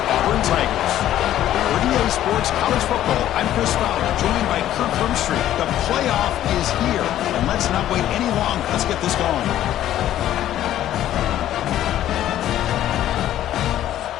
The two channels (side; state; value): right; quieter; 12.5 dB